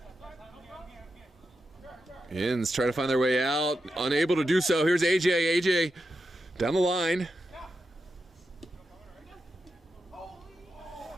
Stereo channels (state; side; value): normal; both; correlation 0.88